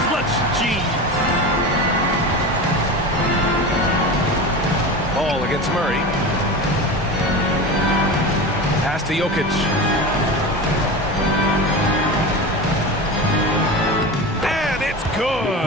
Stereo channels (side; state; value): both; normal; correlation 0.28